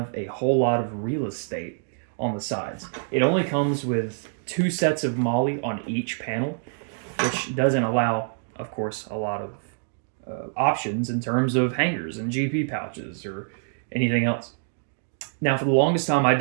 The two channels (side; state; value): left; silent; digital silence